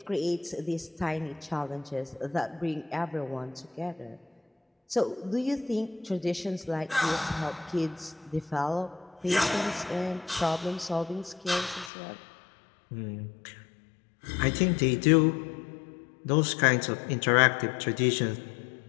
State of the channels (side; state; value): right; drops out; at 11.9 s